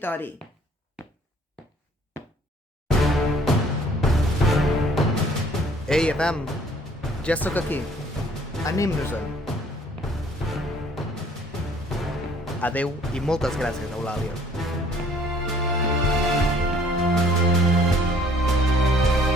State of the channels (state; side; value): normal; both; correlation 0.58